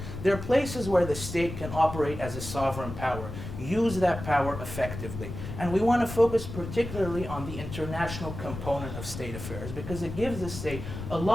they're places where the state can operate as a sovereign power, use that power effectively. And we want to focus particularly on the international component of state affairs because it gives the state a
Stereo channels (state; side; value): noise; left; rumble, 9 dB below the sound